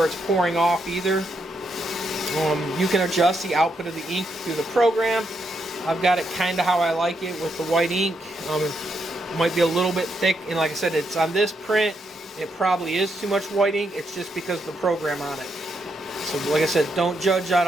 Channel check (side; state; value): both; normal; correlation 0.79